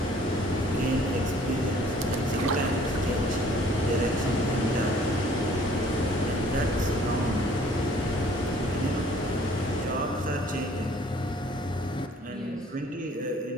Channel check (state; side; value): normal; both; correlation 0.57